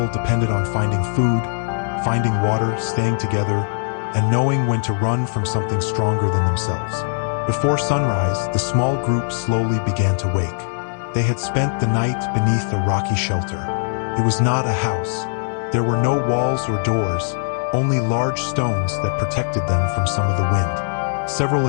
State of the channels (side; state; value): right; silent; 65 dB below the other